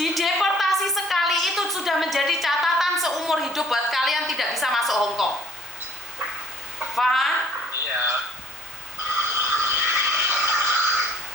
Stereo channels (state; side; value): normal; both; correlation 0.57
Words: sekali itu sudah menjadi catatan seumur hidup buat kalian tidak bisa masuk Hong Kong. Paham? Iya.